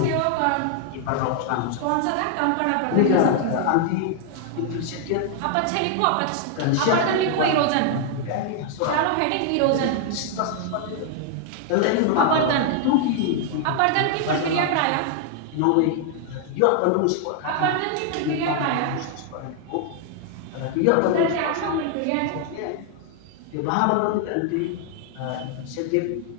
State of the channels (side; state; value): both; different; correlation 0.00